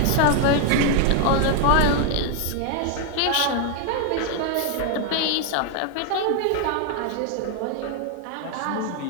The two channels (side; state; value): both; different; correlation 0.00